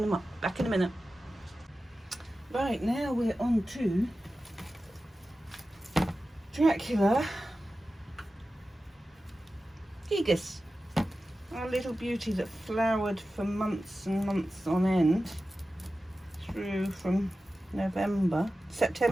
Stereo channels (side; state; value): both; normal; correlation 0.94